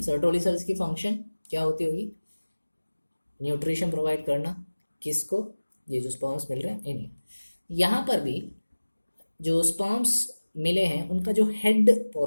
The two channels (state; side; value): inverted; both; correlation -1.00